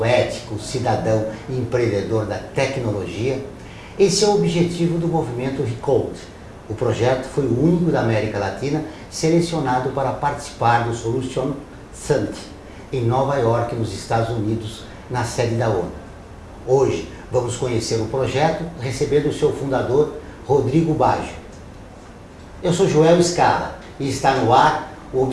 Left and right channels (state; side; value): identical; both; correlation 1.00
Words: ético, cidadão e empreendedor da tecnologia, esse é o objetivo do movimento Recode. O projeto foi o único da América Latina selecionado para participar do Solution Summit em Nova York, nos Estados Unidos, na sede da ONU. Hoje vamos conhecer o projeto recebendo o seu fundador, Rodrigo Baggio. Eu sou Joel Scala e está no ar o